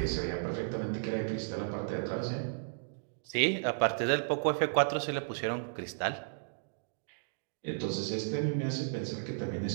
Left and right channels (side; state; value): left; silent; digital silence